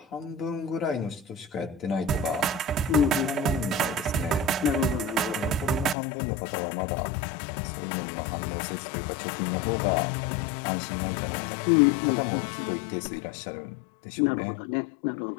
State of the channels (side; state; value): right; drops out; at 6.0 s